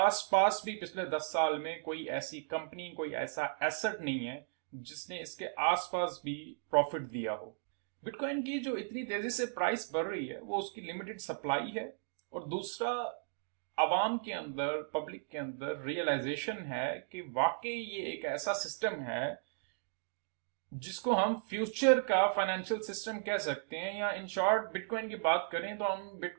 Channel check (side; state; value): left; silent; digital silence